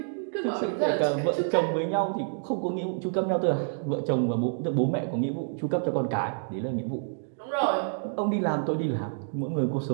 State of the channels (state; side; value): silent; left; digital silence